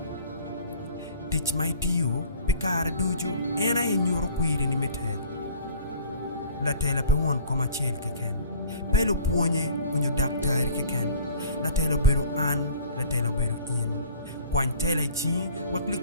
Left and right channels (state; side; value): inverted; both; correlation -0.48